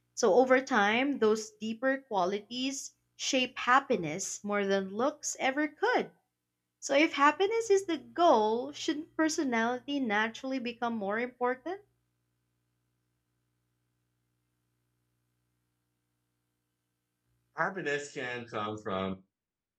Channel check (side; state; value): both; identical; correlation 1.00